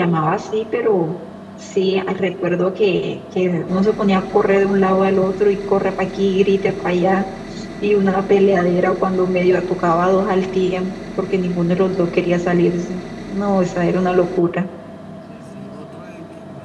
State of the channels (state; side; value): identical; both; correlation 1.00